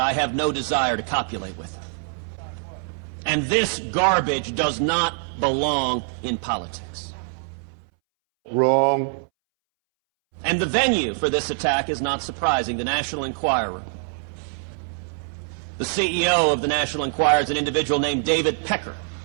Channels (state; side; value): silent; left; 63 dB below the other